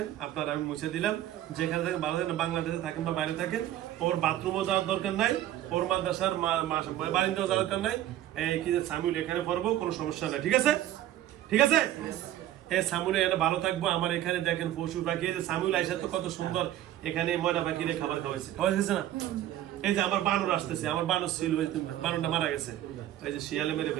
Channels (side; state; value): left; quieter; 12.9 dB